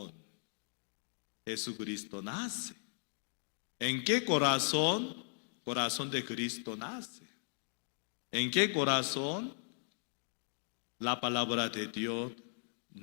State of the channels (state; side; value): silent; right; digital silence